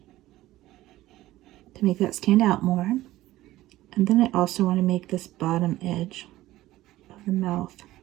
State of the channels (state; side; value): quieter; left; 16.0 dB